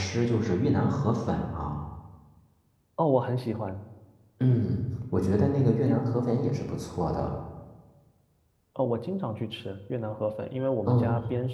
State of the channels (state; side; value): identical; both; correlation 1.00